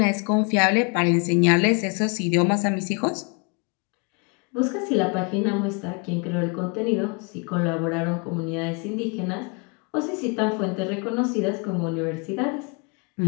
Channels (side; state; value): right; quieter; 33.1 dB